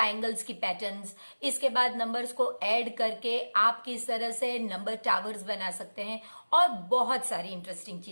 की पैटर्न्स। इसके बाद नंबर्स को ऐड करके आप किस तरह से नंबर टावर्स बना सकते हैं और बहुत सारी इंटरेस्टिंग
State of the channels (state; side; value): inverted; both; correlation -1.00